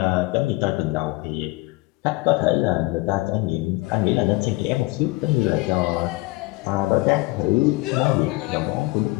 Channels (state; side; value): quieter; right; 22.1 dB